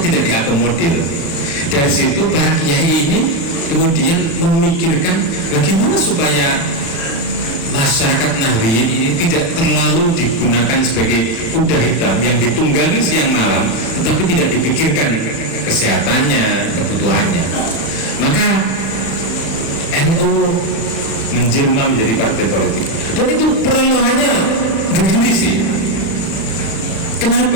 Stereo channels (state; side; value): late; right; 36 ms